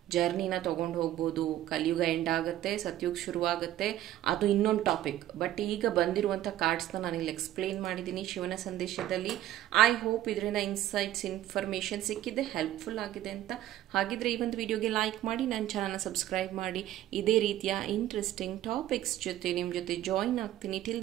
ಜರ್ನಿನ ತೊಗೊಂಡು ಹೋಗ್ಬೋದು. ಕಲಿಯುಗ ಎಂಡ್ ಆಗುತ್ತೆ, ಸತ್ಯುಗ ಶುರುವಾಗುತ್ತೆ, ಅದು ಇನ್ನೊಂದು ಟಾಪಿಕ್. ಬಟ್ ಈಗ ಬಂದಿರುವಂಥ ಕಾರ್ಡ್ಸ್ನ ನಾನು ಇಲ್ಲಿ ಎಕ್ಸ್ಪ್ಲೇನ್ ಮಾಡಿದ್ದೀನಿ ಶಿವನ ಸಂದೇಶದಲ್ಲಿ. ಐ ಹೋಪ್ ಇದರಿಂದ ಇನ್ಸೈಟ್ಸ್, ಇನ್ಫಾರ್ಮೇಷನ್ ಸಿಕ್ಕಿದೆ, ಹೆಲ್ಪ್ಫುಲ್ ಆಗಿದೆ ಅಂತ. ಹಾಗಿದ್ರೆ ಈ ಒಂದು ವಿಡಿಯೋಗೆ ಲೈಕ್ ಮಾಡಿ, ನನ್ನ ಚಾನಲ್ನ ಸಬ್ಸ್ಕ್ರೈಬ್ ಮಾಡಿ. ಇದೇ ರೀತಿಯ ಇಂಟ್ರೆಸ್ಟಿಂಗ್ ಟಾಪಿಕ್ಸ್ ಜೊತೆ ನಿಮ್ಮ ಜೊತೆ ಜಾಯಿನ್ ಆಗ್ತೀನಿ. ಟಿಲ್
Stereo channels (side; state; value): left; quieter; 13.4 dB